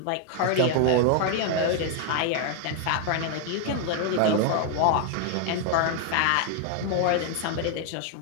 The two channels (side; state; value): both; different; correlation 0.00